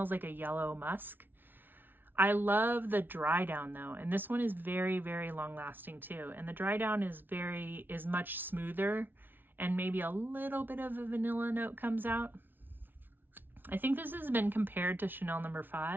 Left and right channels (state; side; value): late; left; 0.095 ms